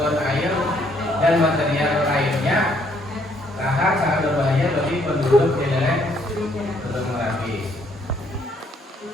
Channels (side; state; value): both; normal; correlation 0.68